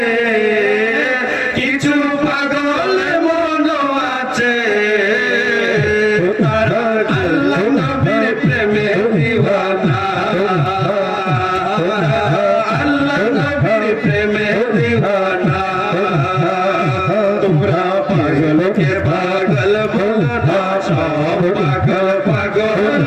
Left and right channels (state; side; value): identical; both; correlation 1.00